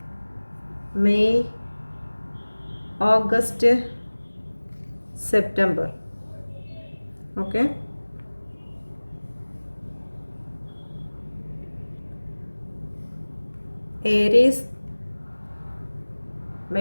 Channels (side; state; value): both; inverted; correlation -1.00